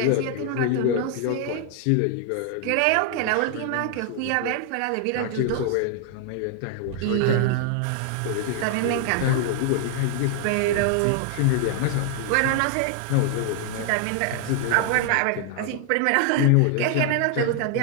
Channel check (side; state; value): both; different; correlation 0.00